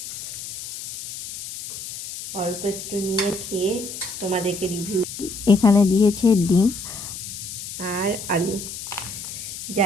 অল্প একটু নিয়ে খেয়ে তোমাদেরকে রিভিউ। এখানে দিয়েছে ডিম আর আলু।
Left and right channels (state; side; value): noise; left; hiss, 9 dB below the sound